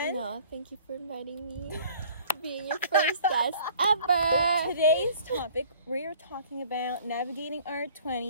No, thank you for inviting me to being your first guest ever. Today's topic, we are talking about navigating our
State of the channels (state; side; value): inverted; both; correlation -0.52